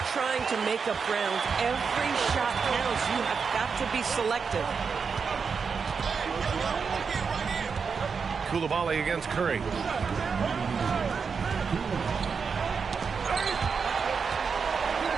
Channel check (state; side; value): quieter; left; 5.7 dB